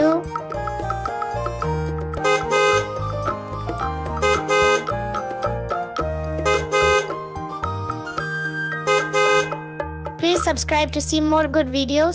Please subscribe to see more good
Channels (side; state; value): both; identical; correlation 1.00